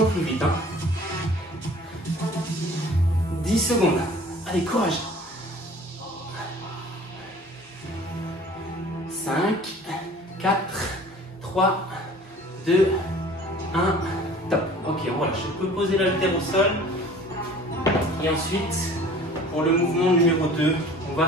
plus vite. Hein. 10 secondes. Allez, courage. 5, 4, 3, 2, 1. Top. Ok, on relâche. Je peux poser l'haltère au sol. Et ensuite, pour le mouvement numéro 2, on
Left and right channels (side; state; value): both; normal; correlation 0.48